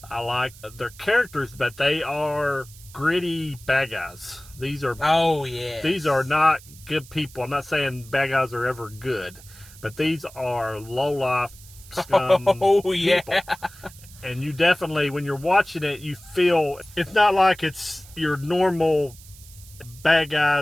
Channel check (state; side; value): noise; right; hiss, 21 dB below the sound